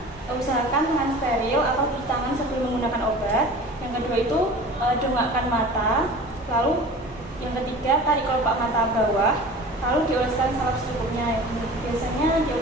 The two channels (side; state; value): both; normal; correlation 0.39